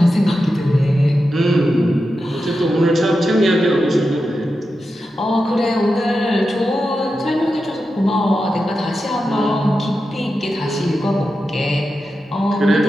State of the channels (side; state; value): both; normal; correlation 0.90